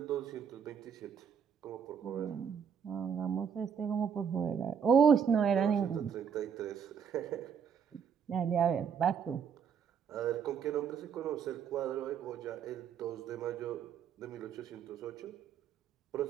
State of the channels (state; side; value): quieter; left; 7.2 dB